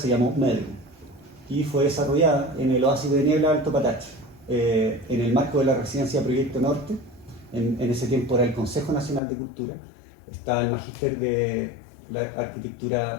llamó Medium y fue desarrollada en el oasis de niebla de Alto Patache, en el marco de la residencia Proyecto Norte. En ese tiempo era el Consejo Nacional de Cultura, estaba el Magíster de la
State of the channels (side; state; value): right; drops out; at 9.2 s